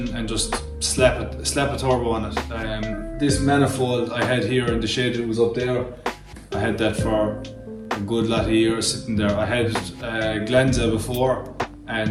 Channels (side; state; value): both; identical; correlation 1.00